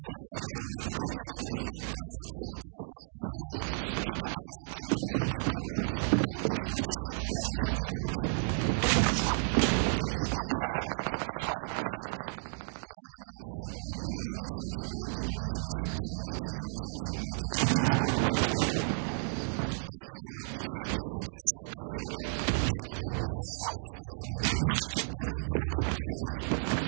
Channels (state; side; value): silent; left; digital silence